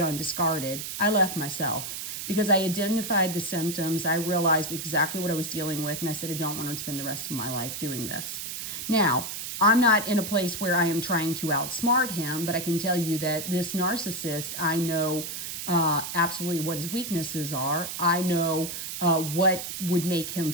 and discarded. I left myself. because I identified the symptoms. I realized exactly what I was dealing with, and I said, I don't want to spend the rest of my life doing this. Now, I'm not in a place where I am trying to outsmart him, but I can tell you that this narcissist, I know absolutely what his weaknesses are. I know what would make him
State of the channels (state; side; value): noise; right; hiss, 6 dB below the sound